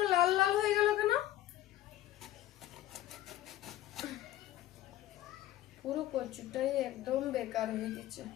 লাল লাল হয়ে গেল কেন? পুরো কচুটাই একদম বেকার হয়ে গেছে,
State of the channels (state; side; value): quieter; right; 13.9 dB